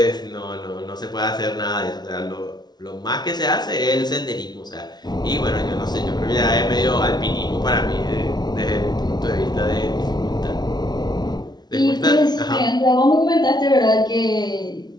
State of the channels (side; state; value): right; late; 0.20 ms